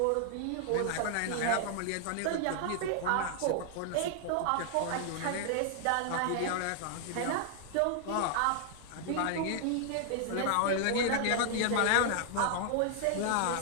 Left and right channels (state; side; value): different; both; correlation 0.00